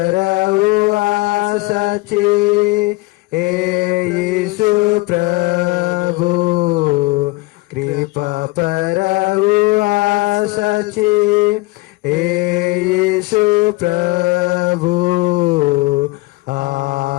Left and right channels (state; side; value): quieter; right; 22.8 dB